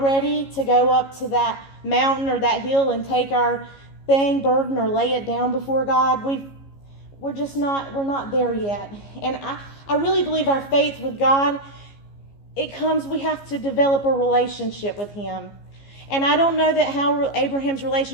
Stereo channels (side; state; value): right; late; 15 ms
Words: ready to go up to that mountain or that hill and take our burden or lay it down before God. We're not there yet. And I really believe our faith with God, we have to develop a relationship with him. And I don't know how Abraham's